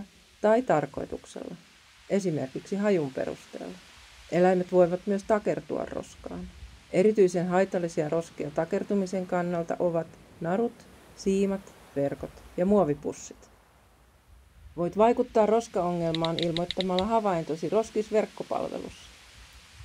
tai tarkoituksella, esimerkiksi hajun perusteella. Eläimet voivat myös takertua roskaan. Erityisen haitallisia roskia takertumisen kannalta ovat narut, siimat, verkot ja muovipussit. Voit vaikuttaa roskaongelmaan ilmoittamalla havaintosi roskisverkkopalvelussa.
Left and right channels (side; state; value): both; identical; correlation 1.00